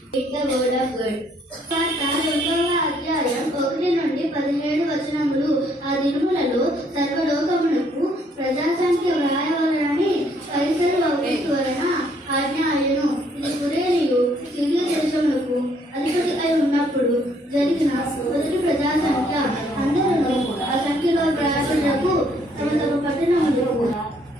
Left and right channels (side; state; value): both; normal; correlation 0.67